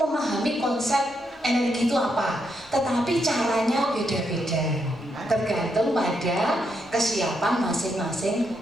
konsep energi itu apa, tetapi caranya beda-beda, tergantung pada kesiapan masing-masing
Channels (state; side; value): normal; both; correlation 0.80